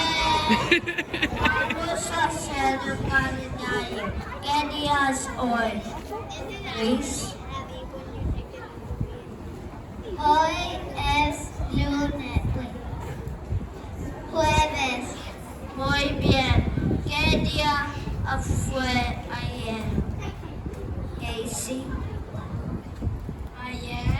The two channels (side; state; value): both; identical; correlation 1.00